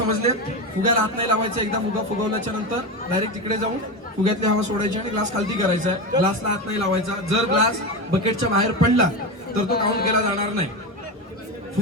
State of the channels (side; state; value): both; normal; correlation 0.18